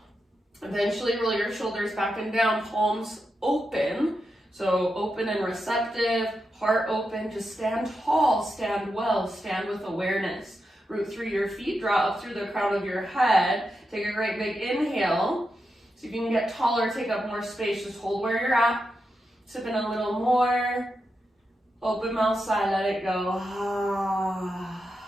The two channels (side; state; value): both; normal; correlation 0.87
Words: Eventually roll your shoulders back and down, palms open. So open and receptive, heart open. Just stand tall, stand well, stand with awareness. Root through your feet, draw up through the crown of your head. Take a great big inhale. See if you can get taller, take up more space. Just hold where you're at. Sip in a little more. Open mouth sigh, let it go.